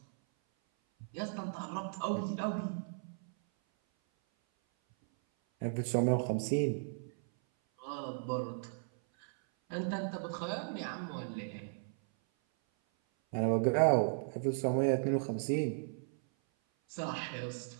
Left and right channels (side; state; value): left; silent; 54 dB below the other